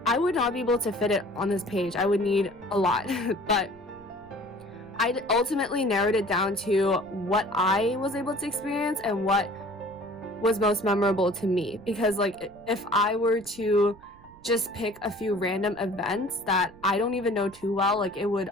I would not be able to fit it on this page. I would need a lot. But I ultimately narrowed it down to what I was able to experience and what was most memorable to me. Because like if I were to just pick a few random events that I don't even know too well, like it would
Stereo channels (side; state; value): right; noise; rumble, 24 dB below the sound